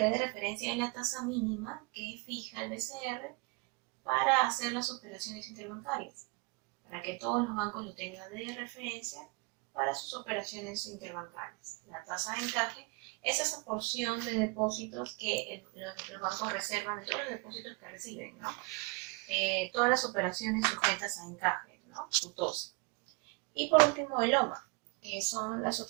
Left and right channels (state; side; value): quieter; left; 28.7 dB